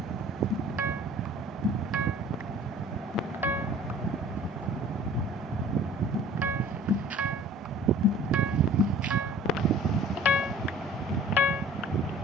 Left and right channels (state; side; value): normal; both; correlation 0.48